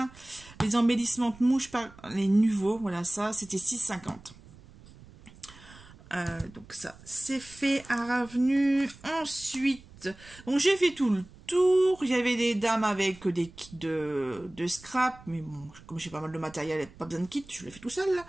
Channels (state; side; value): noise; right; rumble, 22 dB below the sound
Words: Les embellissements de mouches par les nouveaux. Voilà, ça, c'était 6,50. Donc ça, c'est fait à revenu. Ensuite, donc j'ai fait tout le tour. Il y avait des dames avec des kits de scrap. Mais bon, comme j'ai pas mal de matériel, pas besoin de kit, je l'ai fait tout seul. Là.